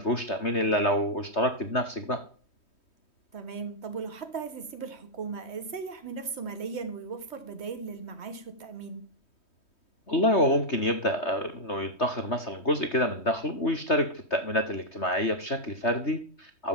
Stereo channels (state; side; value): late; right; 3.2 ms